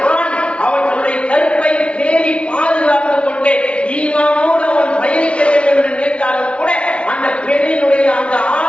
ஆண் அவன் தன்னுடைய கற்பை பேணி பாதுகாத்துக் கொண்டு ஈமானோடு அவன் பயணிக்க வேண்டும் என்று நினைத்தாலும் கூட அந்த பெண்ணினுடைய அந்த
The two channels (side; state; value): right; late; 0.060 ms